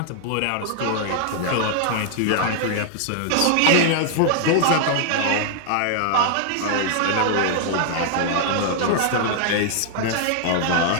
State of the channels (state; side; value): different; both; correlation 0.00